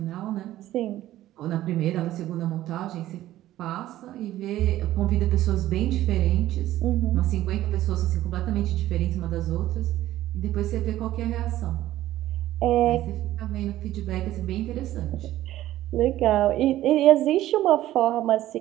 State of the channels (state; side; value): quieter; left; 14.3 dB